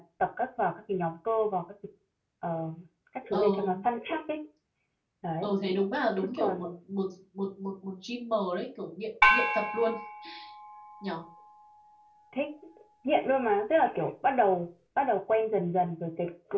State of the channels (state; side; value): identical; both; correlation 1.00